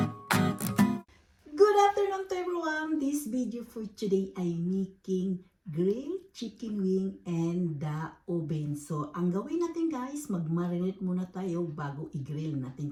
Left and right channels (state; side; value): identical; both; correlation 1.00